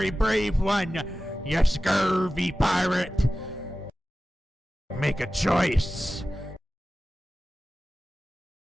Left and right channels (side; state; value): both; normal; correlation 0.95